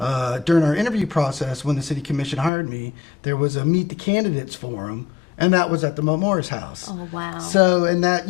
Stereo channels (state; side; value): drops out; right; at 2.5 s